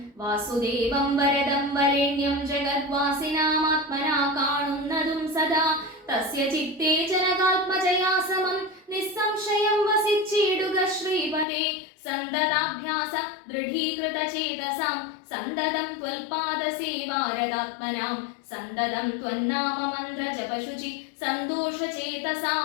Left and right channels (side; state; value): right; drops out; at 11.5 s